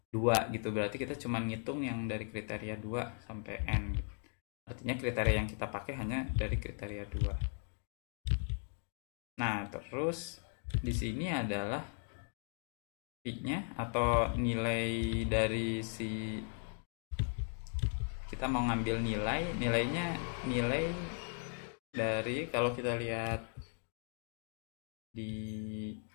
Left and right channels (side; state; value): right; silent; 53 dB below the other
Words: 2 gitu, berarti kita cuma ngitung yang dari kriteria 2 sampai N gitu. Artinya kriteria yang kita pakai hanya dari kriteria 2. Nah, terus di sini adalah I-nya atau nilai dari si kita mau ngambil nilainya dari, kalau kita lihat di